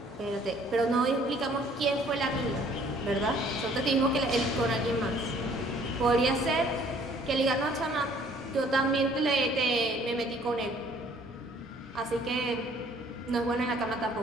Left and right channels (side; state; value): both; normal; correlation 0.58